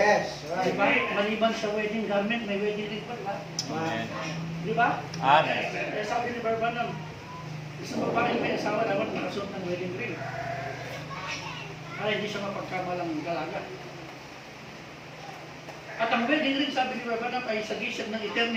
right. Diba? Maliban sa wedding garment, may wedding ring pa, diba? Amen. Diba? Amen. Kaya sabi ni Barbanam, isang babae may asawa dapat nakasuot ng wedding ring. Para hindi siya mapagkamalang dalaga. At ang wedding ring, sabi ni Barbanam, ay sagisag ng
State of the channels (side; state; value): both; identical; correlation 1.00